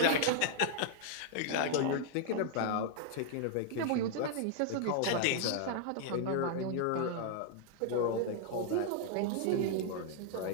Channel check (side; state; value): both; different; correlation -0.01